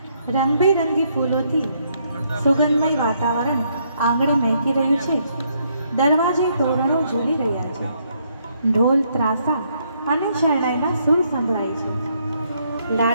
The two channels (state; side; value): inverted; both; correlation -0.72